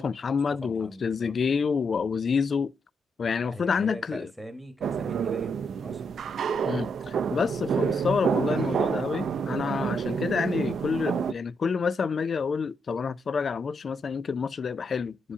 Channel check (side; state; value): both; normal; correlation 0.80